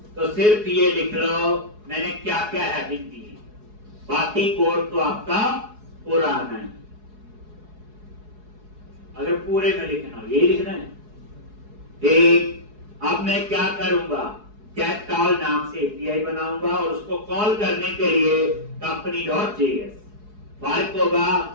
तो सिर्फ ये लिख लो मैंने क्या क्या हेडिंग दी है, बाकी कोड तो आपका पुराना है। अगर पूरे में लिखना हो यही लिखना है। ठीक, अब मैं क्या करूंगा, कैट कॉल नाम से एपीआई बनाऊंगा और उसको कॉल करने के लिए company.js फर्क होगा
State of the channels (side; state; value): left; late; 4.7 ms